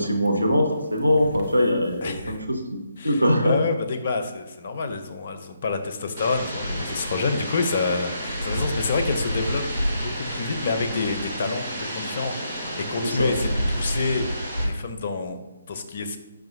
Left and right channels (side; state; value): both; inverted; correlation -0.79